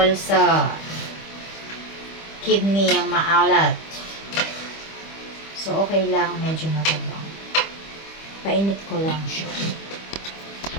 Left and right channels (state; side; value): late; right; 25 ms